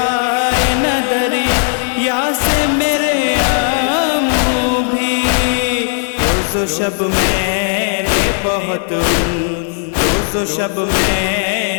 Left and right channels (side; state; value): right; silent; 61 dB below the other